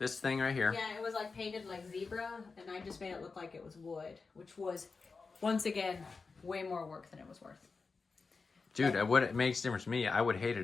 thing right here. Yeah, it was like painted like zebra, and I just made it look like it was wood, which was, once again, way more work than it was worth. Dude, what it makes a difference to me, I would hate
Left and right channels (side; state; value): right; quieter; 4.5 dB